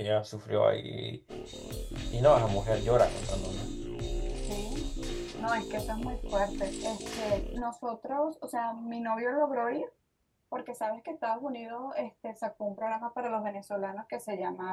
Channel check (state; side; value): identical; both; correlation 1.00